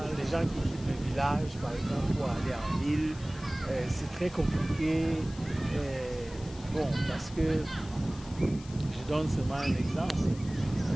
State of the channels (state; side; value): noise; left; hiss, 19 dB below the sound